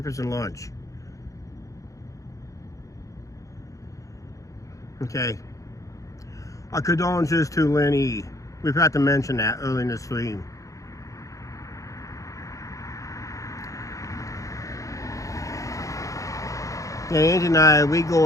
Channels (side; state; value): right; late; 0.16 ms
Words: and lunch. Okay. Our condolences to Lenny. We forgot to mention that early in the stream. Yeah, Angie and I, we